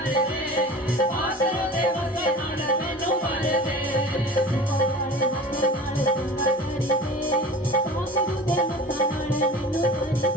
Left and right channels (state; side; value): normal; both; correlation 0.38